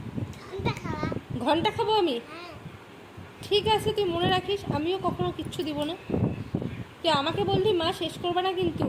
ঘন্টা খাবো আমি? ঠিক আছে তুই মনে রাখিস আমিও কখনো কিচ্ছু দিব না। তুই আমাকে বললি মা শেষ করবে না কিন্তু,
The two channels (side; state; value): both; identical; correlation 1.00